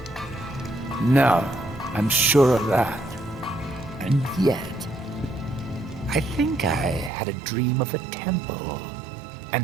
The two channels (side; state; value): left; drops out; at 7.1 s